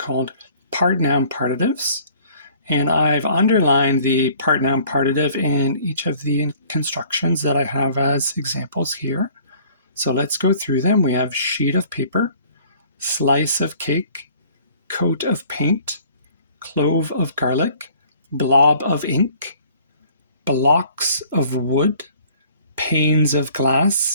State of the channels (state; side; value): inverted; both; correlation -0.54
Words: part-noun partitives. And I've underlined the part-noun partitive in each of the constructions that I have as examples here. So let's go through them. We have sheet of paper, slice of cake, coat of paint, clove of garlic, blob of ink, blocks of wood, panes of